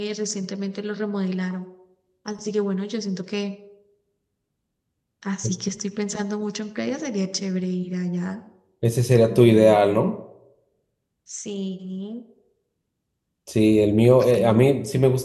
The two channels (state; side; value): identical; both; correlation 1.00